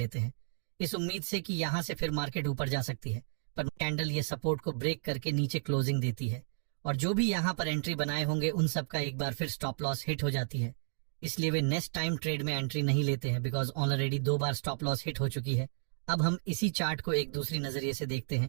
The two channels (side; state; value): left; silent; digital silence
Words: हैं, इस उम्मीद से कि यहाँ से फिर मार्केट ऊपर जा सकती है। पर कैंडल ये सपोर्ट को ब्रेक करके नीचे क्लोजिंग देती है और जो भी यहाँ पर एंट्री बनाए होंगे उन सबका एक बार फिर स्टॉप लॉस हिट हो जाती है। इसलिए वे नेक्स्ट टाइम ट्रेड में एंट्री नहीं लेते हैं, because already 2 bar stop loss hit हो चुकी है। अब हम इसी चार्ट को एक दूसरी नजरिए से देखते हैं,